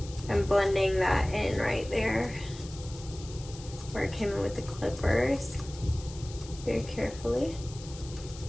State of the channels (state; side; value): noise; left; hiss, 17 dB below the sound